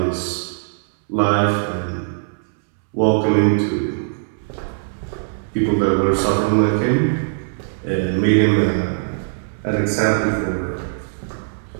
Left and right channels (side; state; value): left; silent; 65 dB below the other